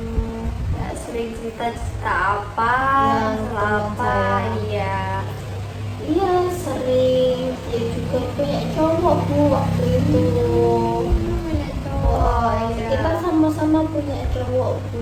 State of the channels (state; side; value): identical; both; correlation 1.00